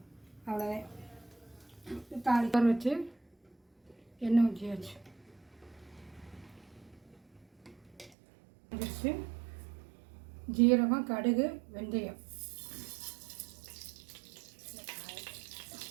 அவ்வளோதான். தாளிக்க வச்சு எண்ணெய் ஊற்றியாச்சு. வச்சு ஜீரகம், கடுகு, வெந்தயம்,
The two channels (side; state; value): left; drops out; at 8.1 s